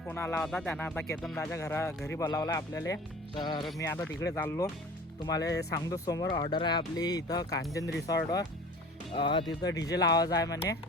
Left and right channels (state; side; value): normal; both; correlation 0.42